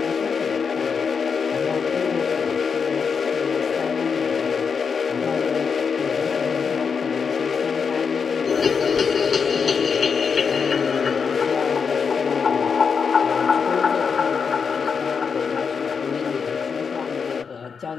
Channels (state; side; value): quieter; right; 5.9 dB